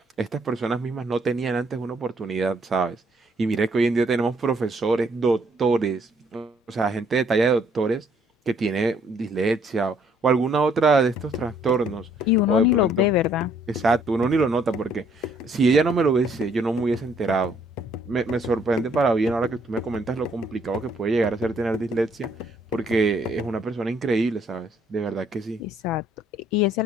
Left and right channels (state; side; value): normal; both; correlation 0.66